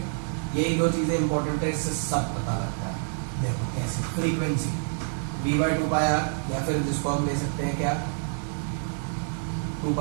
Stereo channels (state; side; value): silent; left; 56 dB below the other